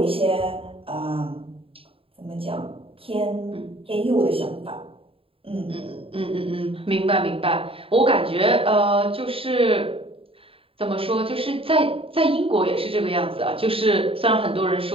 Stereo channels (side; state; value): left; late; 0.27 ms